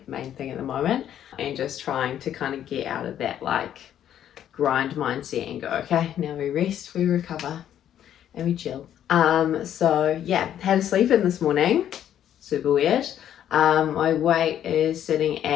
thing at the moment, and just trying to kind of get out of that like grind mindset and go, okay, now we rest, we recover, and we chill. So yeah, had a sleep in this morning, super weird. My weight is sitting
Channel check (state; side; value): quieter; right; 10.5 dB